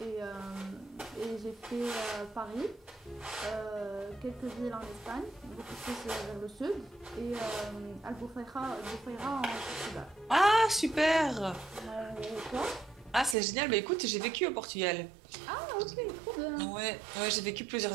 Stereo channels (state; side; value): drops out; left; at 13.4 s